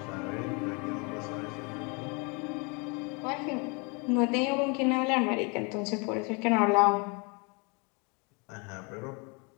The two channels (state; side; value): quieter; right; 31.6 dB